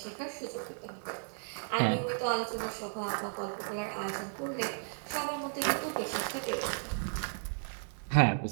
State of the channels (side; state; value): left; silent; digital silence